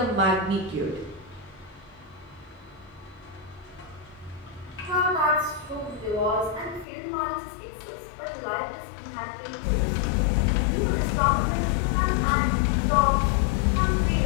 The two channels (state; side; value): drops out; right; at 6.9 s